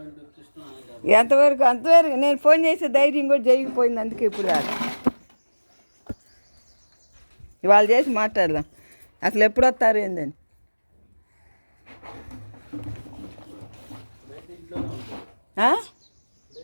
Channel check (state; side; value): inverted; both; correlation -1.00